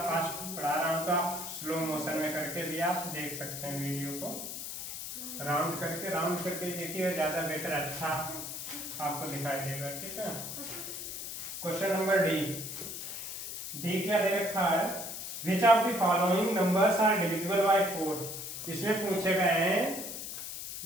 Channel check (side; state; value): left; noise; hiss, 7 dB below the sound